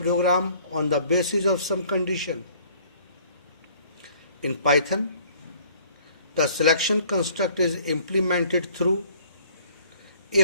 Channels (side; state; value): both; inverted; correlation -0.57